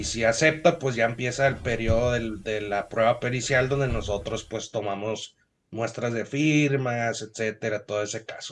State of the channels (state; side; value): identical; both; correlation 1.00